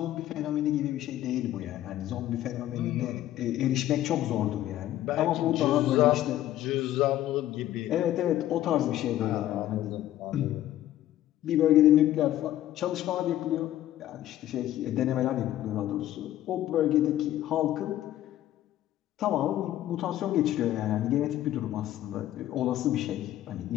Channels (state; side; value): quieter; right; 13.4 dB